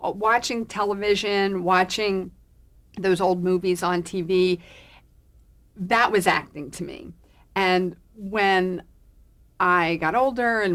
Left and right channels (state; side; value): identical; both; correlation 1.00